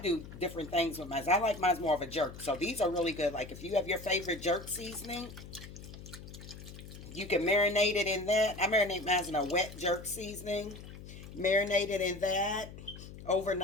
different things with mine. I like mine more of a jerk. So these are really good. Like if you have your favorite jerk seasoning, you can marinate it in that. I marinate mine in a wet jerk seasoning. Marinate it in that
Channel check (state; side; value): noise; left; hum, 14 dB below the sound